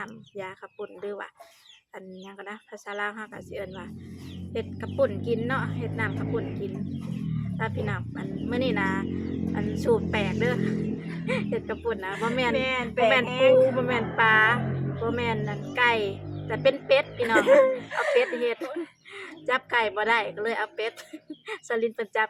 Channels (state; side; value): identical; both; correlation 1.00